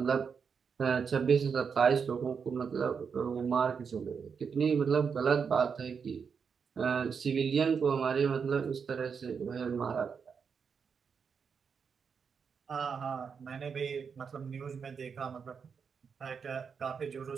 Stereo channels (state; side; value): quieter; left; 6.2 dB